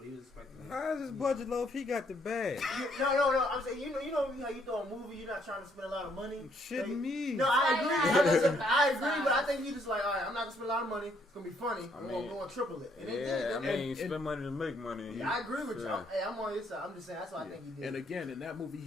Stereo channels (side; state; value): both; normal; correlation 0.69